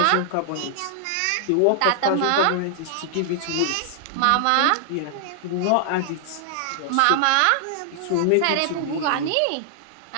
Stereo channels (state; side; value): different; both; correlation -0.01